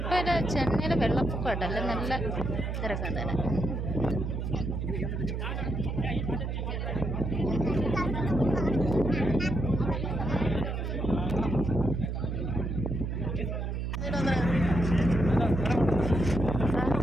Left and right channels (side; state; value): right; noise; hum, 2 dB below the sound